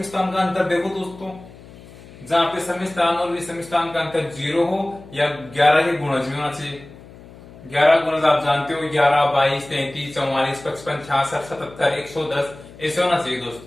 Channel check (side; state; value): left; noise; hum, 20 dB below the sound